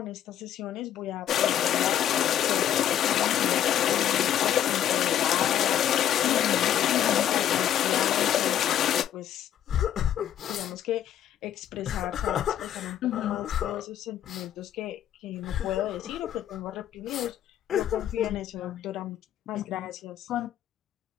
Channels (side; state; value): right; quieter; 10.7 dB